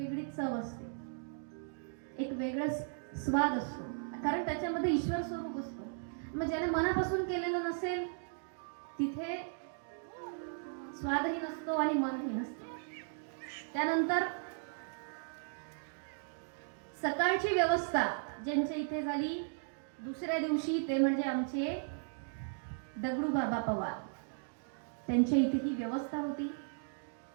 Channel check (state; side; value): silent; left; digital silence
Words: चव असते, एक वेगळा स्वाद असतो, कारण त्याच्यामध्ये ईश्वर स्वरूप असतो. मग ज्याने मनापासून केलेलं नसेल तिथे स्वादही नसतो आणि मनही नसतो. त्यानंतर सकाळची व्यवस्था ज्यांच्या इथे झाली दुसऱ्या दिवशी ते म्हणजे आमचे दगडू बाबा पवार, त्यांच्या इथे ही व्यवस्था होती.